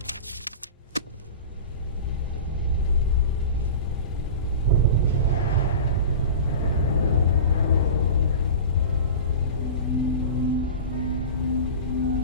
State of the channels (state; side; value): inverted; both; correlation -0.31